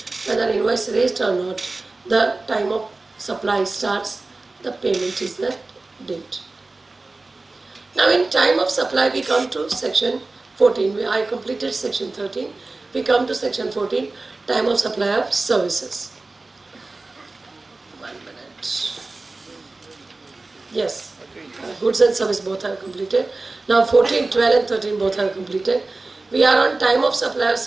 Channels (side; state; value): left; quieter; 3.3 dB